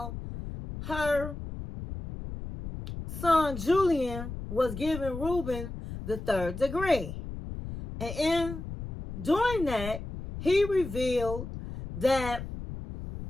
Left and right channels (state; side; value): noise; left; rumble, 9 dB below the sound